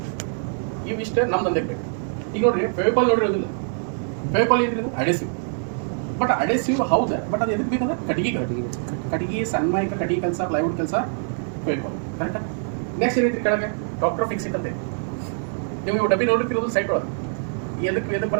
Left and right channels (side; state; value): left; silent; digital silence